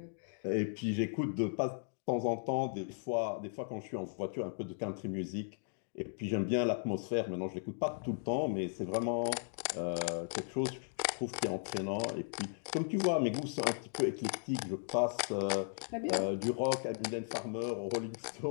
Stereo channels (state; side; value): silent; right; digital silence